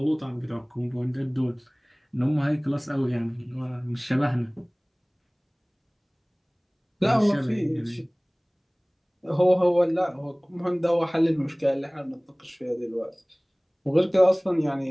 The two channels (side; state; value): both; identical; correlation 1.00